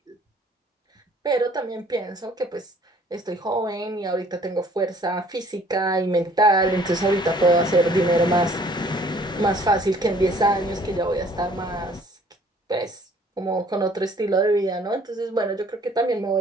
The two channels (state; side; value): normal; both; correlation 0.57